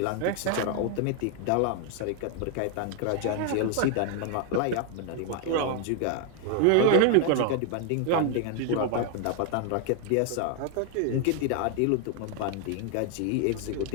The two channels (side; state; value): both; different; correlation 0.00